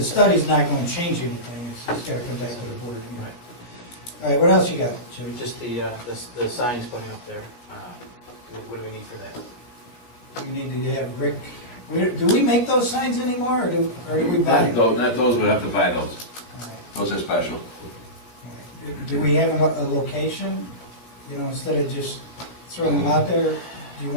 study's not going to change anything, it's just got to come back to the board. Right. All right, what else you got, Jimmy? Just the signs putting up there. What do we need for that? We need to have Rick, do we make those signs anymore, or do we buy them? Not those, we have to buy those. All right. Those are special. All right. Do we have a location, you know, instead of just throwing them out there, do you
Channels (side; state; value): right; late; 16 ms